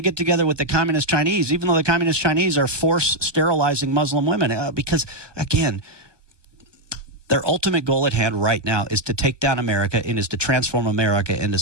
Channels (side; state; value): left; late; 1.1 ms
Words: get together with the communist Chinese, even though the communist Chinese are force sterilizing Muslim women? Because, again, their ultimate goal at hand right now is to take down America and is to transform America into